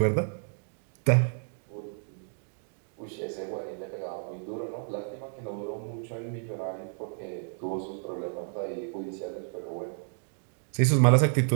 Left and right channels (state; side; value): silent; left; 57 dB below the other